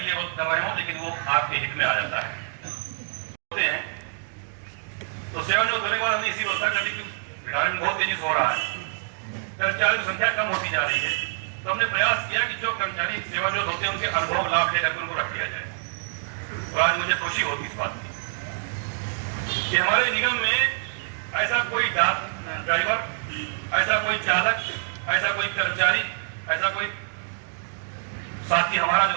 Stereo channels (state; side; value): silent; left; digital silence